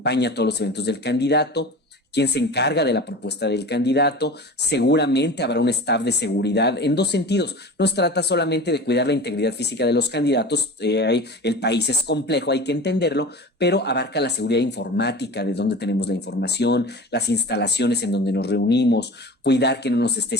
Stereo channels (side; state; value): both; normal; correlation 0.34